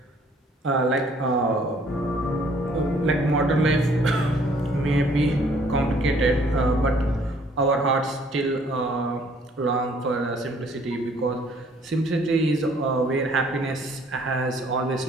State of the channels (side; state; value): both; normal; correlation 0.61